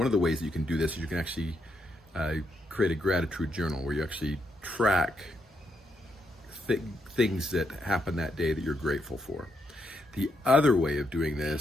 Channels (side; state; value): both; normal; correlation 0.79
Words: of the ways that you can do this is you can actually create a gratitude journal where you actually track things that happen that day that you're grateful for. The other way of doing